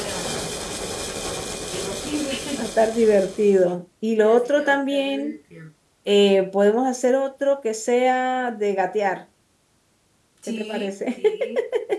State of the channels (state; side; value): identical; both; correlation 1.00